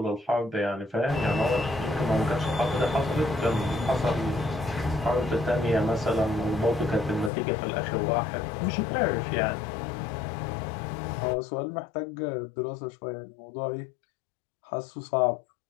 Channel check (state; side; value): drops out; right; at 7.3 s